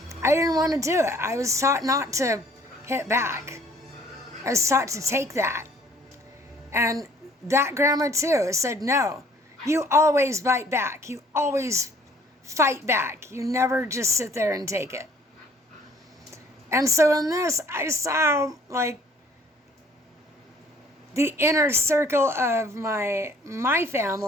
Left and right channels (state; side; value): normal; both; correlation 0.58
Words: I didn't want to do it. I was taught not to hit back. I was taught to take that. And that grandma too said, no, you always bite back. You always fight back. You never just sit there and take it. And so in this, I saw like the inner circle of my